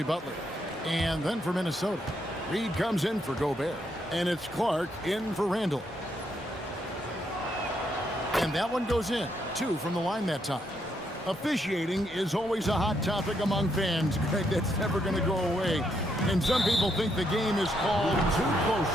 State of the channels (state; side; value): normal; both; correlation 0.76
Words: Butler. And then for Minnesota, Reed comes in for Gobert. And it's Clark in for Randall. And that one goes in. 2 from the line that time. Officiating is always a hot topic among fans, Greg. That's never going to go away. And some people think the game is called too